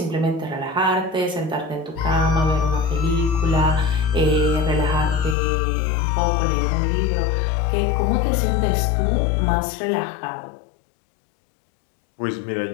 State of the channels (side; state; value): right; drops out; at 5.4 s